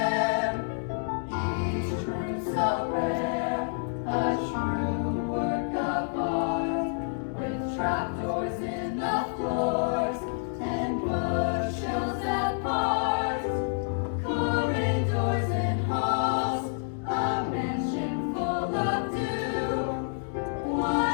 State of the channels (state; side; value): silent; right; digital silence